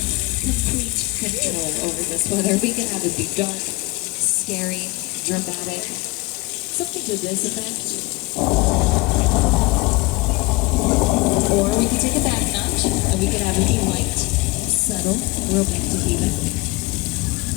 complete control over this weather. We can have it be dark, scary, dramatic, something to this effect. Or we can take a back notch and we can have it be light, subtle, romantic even.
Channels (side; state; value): right; quieter; 24.0 dB